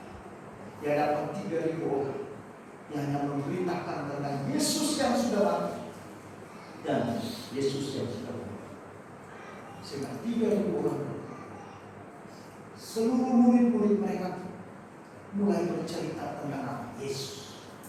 dia dapat 3.000 orang yang hanya memberitakan tentang Yesus yang sudah mati dan Yesus yang sudah mati. Sehingga 3.000 orang, seluruh murid-murid mereka mulai bercerita tentang Yesus.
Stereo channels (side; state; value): both; identical; correlation 1.00